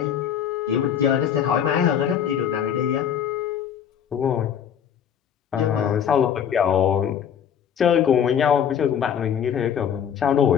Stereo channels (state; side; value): quieter; right; 8.6 dB